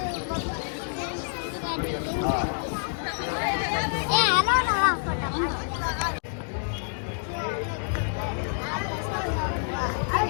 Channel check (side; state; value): right; silent; digital silence